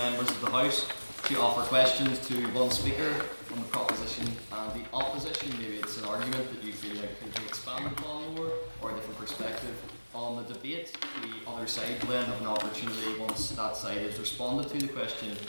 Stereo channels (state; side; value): inverted; both; correlation -1.00